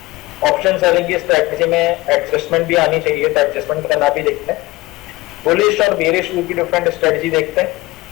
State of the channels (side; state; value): right; quieter; 20.3 dB